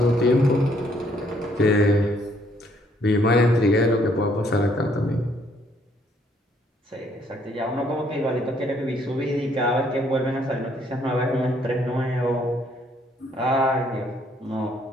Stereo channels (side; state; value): both; normal; correlation 0.67